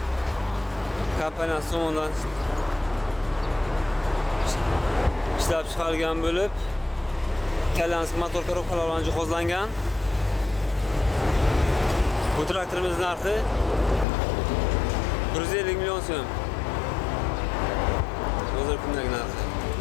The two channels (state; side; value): drops out; right; at 14.1 s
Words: kompaniyasi tomonidan ishlab chiqarilgan bo'lib, italyansk motor korobkalar bilan jihozlangan. Bu traktorimiz narxi 150 million so'm. Hozir kundagi narxi.